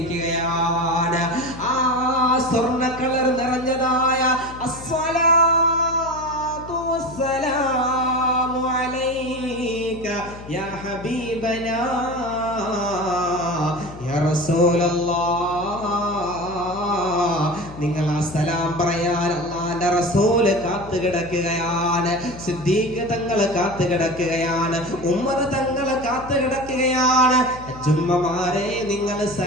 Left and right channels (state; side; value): noise; left; hum, 15 dB below the sound